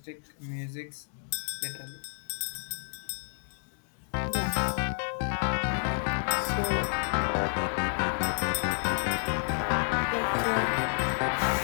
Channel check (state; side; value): silent; right; digital silence